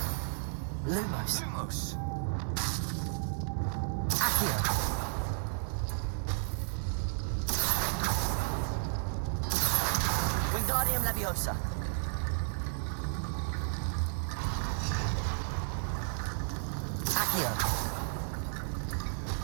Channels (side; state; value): left; silent; digital silence